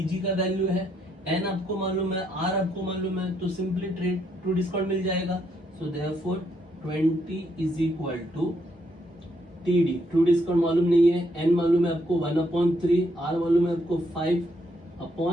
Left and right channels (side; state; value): both; normal; correlation 0.75